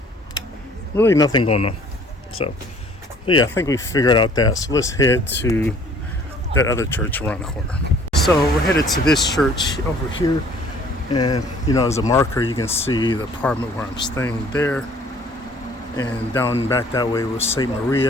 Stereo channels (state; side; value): normal; both; correlation 0.55